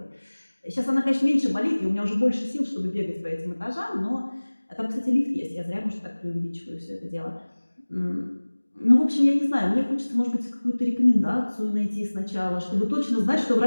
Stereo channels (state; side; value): inverted; both; correlation -1.00